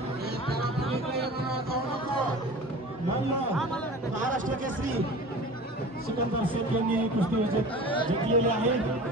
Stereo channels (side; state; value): both; normal; correlation 0.38